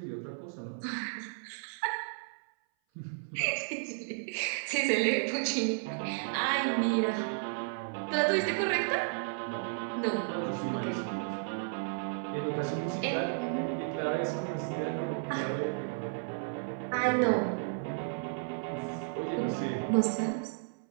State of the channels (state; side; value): silent; left; 56 dB below the other